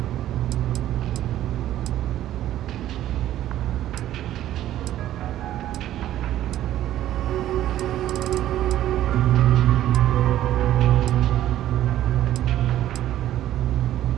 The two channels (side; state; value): left; quieter; 12.9 dB